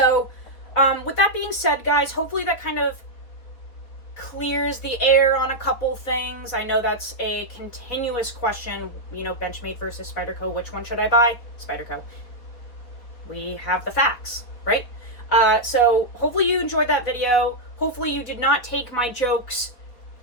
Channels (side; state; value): right; late; 4.2 ms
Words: with that being said, guys, hopefully that kind of clears the air on a couple things. I know that's a continuous question, Benchmade versus Spyderco, which one should I buy? Spyderco. We have the facts, right? So hopefully you enjoyed that video. Hopefully you did not take my jokes